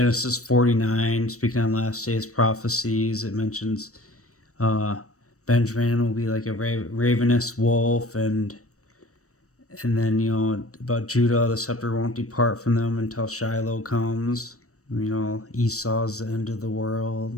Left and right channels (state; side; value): late; right; 0.65 ms